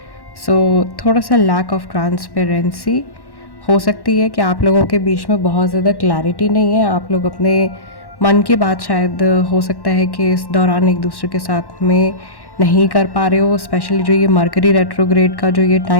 सो थोड़ा सा लैक ऑफ ट्रांसपेरेंसी हो सकती है कि आप लोगों के बीच में बहुत ज़्यादा क्लैरिटी नहीं है। आप लोग अपने मन की बात शायद हो सकता है कि इस दौरान एक दूसरे के साथ में नहीं कर पा रहे हो, स्पेशली जो ये मरकरी रेट्रोग्रेड का जो ये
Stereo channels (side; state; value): right; late; 1.1 ms